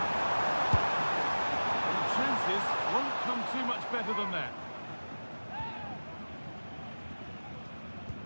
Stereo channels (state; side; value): inverted; both; correlation -1.00